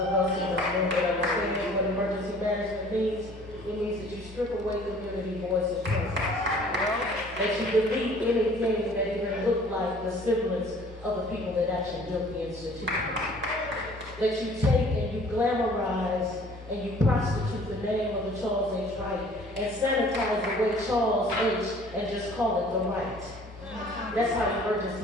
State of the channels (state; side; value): normal; both; correlation 0.52